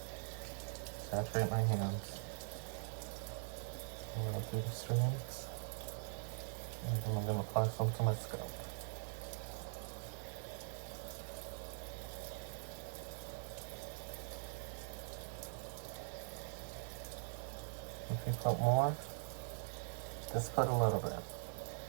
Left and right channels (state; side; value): silent; left; digital silence